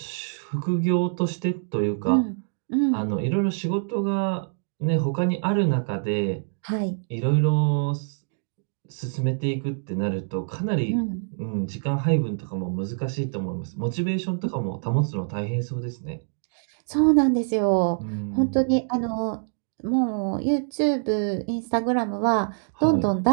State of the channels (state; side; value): silent; left; digital silence